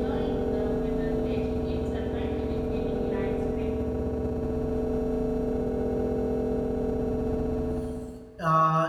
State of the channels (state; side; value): identical; both; correlation 1.00